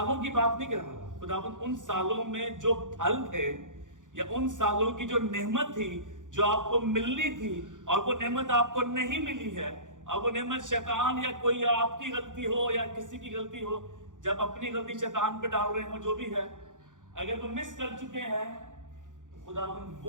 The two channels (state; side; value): late; left; 0.87 ms